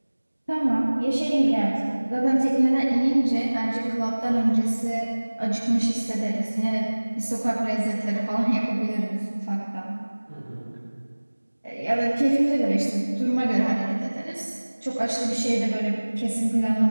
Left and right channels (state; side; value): inverted; both; correlation -1.00